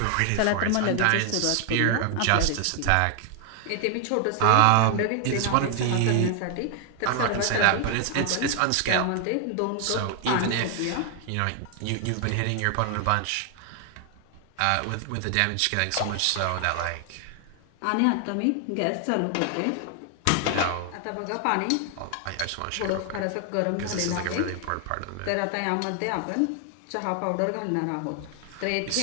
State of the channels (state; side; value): different; both; correlation 0.00